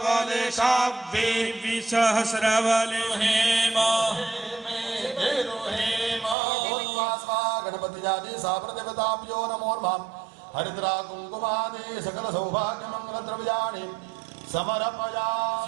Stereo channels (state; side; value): drops out; left; at 6.4 s